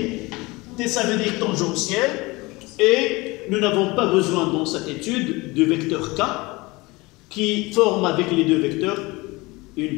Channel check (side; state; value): right; quieter; 23.2 dB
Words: ça veut dire tangentiel, et nous n'avons pas besoin dans cette étude de vecteur K qui forme avec les deux vecteurs une